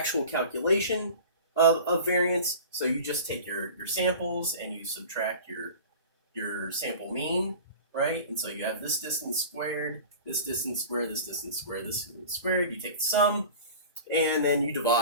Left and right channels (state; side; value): inverted; both; correlation -0.38